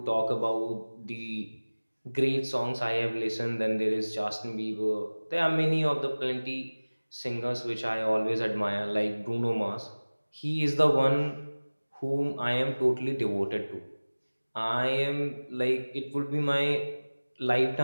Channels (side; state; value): both; inverted; correlation -1.00